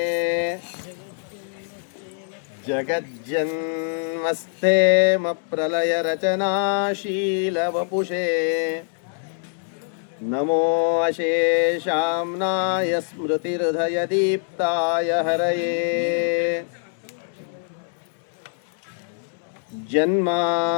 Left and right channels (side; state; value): right; silent; digital silence